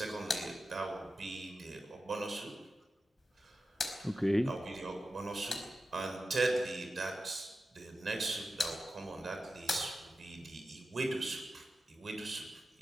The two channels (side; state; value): both; normal; correlation 0.92